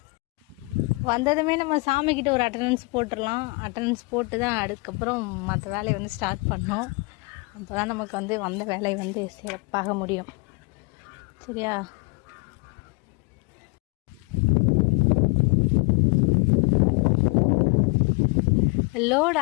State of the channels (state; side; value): quieter; right; 27.8 dB